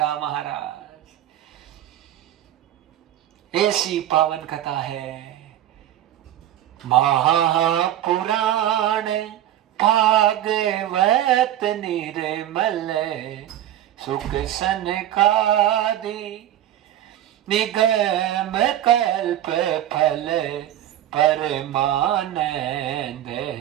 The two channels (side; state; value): left; quieter; 12.3 dB